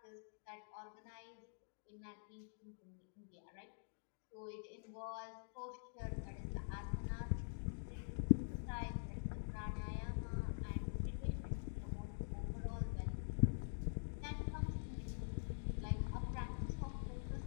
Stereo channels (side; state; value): right; silent; digital silence